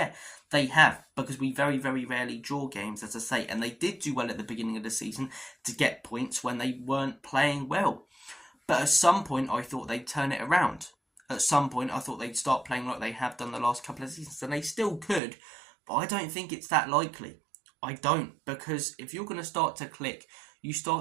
they have, because we very, very rarely draw games, as I say. And they did do well at the beginning of the season to get points when they weren't playing well. But at some point, I thought they'd turn it around. At some point, I thought they'd start playing like they have done the last couple of seasons, and they still could, but I don't think it's that likely. I don't, because if you're going to start to click, you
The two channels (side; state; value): left; drops out; at 15.2 s